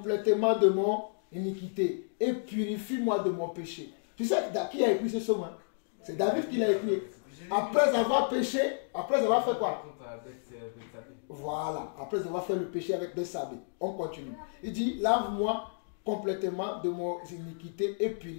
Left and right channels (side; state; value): right; silent; digital silence